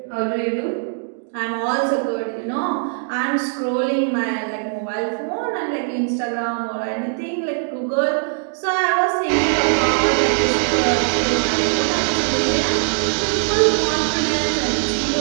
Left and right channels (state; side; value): silent; left; digital silence